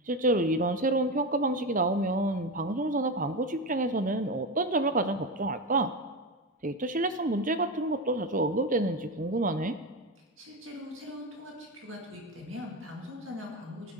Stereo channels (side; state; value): both; normal; correlation 0.18